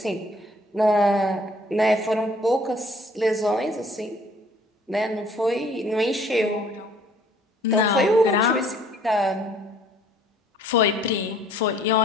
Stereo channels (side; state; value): both; normal; correlation 0.58